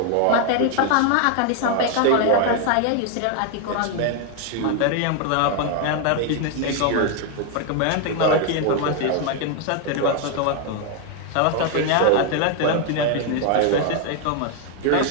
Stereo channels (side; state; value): both; different; correlation 0.01